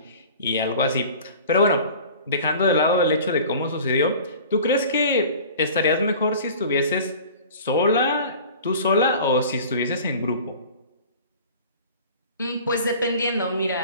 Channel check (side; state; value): both; inverted; correlation -0.43